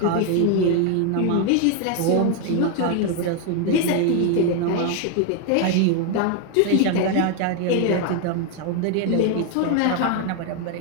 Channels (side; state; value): both; different; correlation 0.01